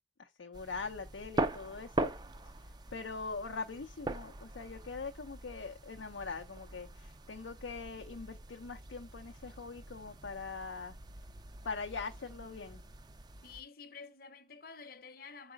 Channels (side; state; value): both; normal; correlation 0.11